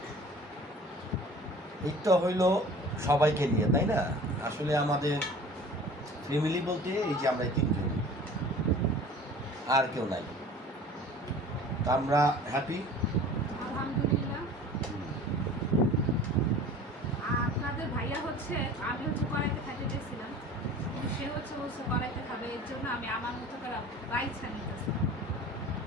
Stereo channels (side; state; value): both; normal; correlation 0.44